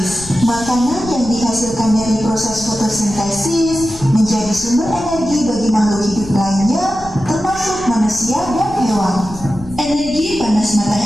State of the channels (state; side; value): noise; left; rumble, 16 dB below the sound